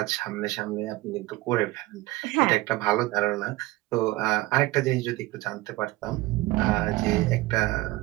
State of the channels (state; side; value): quieter; left; 18.9 dB